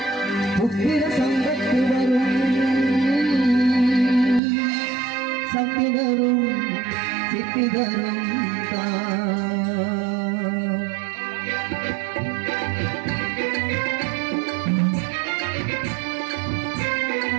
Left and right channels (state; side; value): drops out; left; at 4.4 s